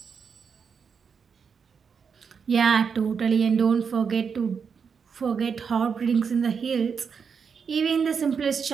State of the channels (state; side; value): quieter; left; 6.2 dB